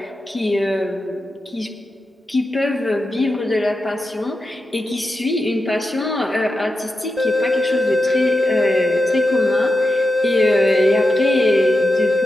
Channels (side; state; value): both; normal; correlation 0.89